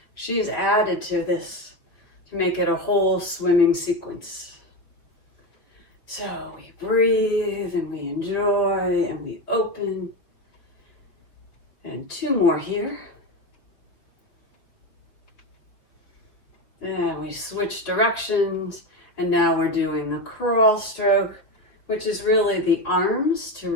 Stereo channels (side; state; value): right; late; 5.6 ms